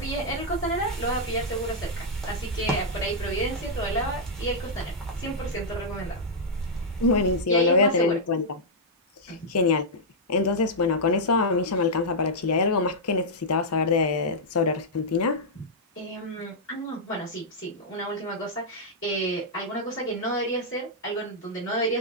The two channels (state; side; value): normal; both; correlation -0.07